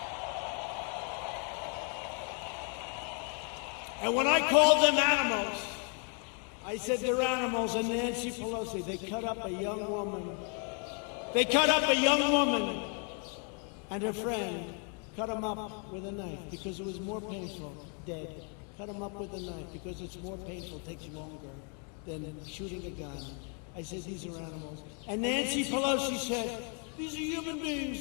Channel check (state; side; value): quieter; right; 40.0 dB